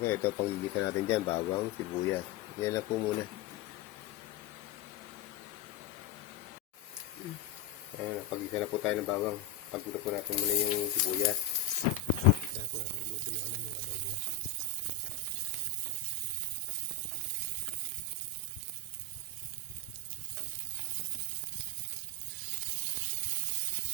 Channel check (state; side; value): quieter; right; 4.0 dB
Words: ito panggigisa natin dyan, bawang, sibuyas. Yan lang po muna. Pag-gisa na po tayo ng bawang. Pag-gisa po natin muna yung sibuyas. Kaya po natin luto yung yung adobo.